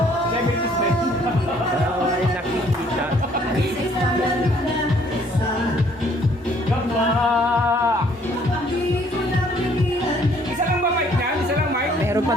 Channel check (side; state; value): both; normal; correlation 0.62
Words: 70s ba yun? Ay, nakikita. Gamba! Isa lang ba mic niyan? Isa lang mic? Meron pa